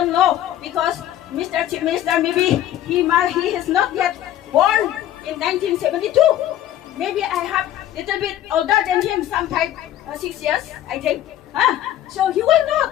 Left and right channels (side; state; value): right; quieter; 12.2 dB